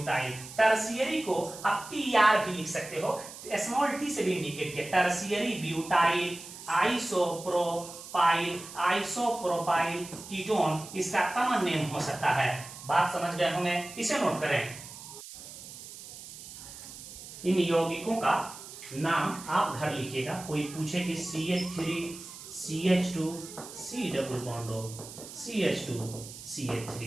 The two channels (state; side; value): noise; right; hiss, 14 dB below the sound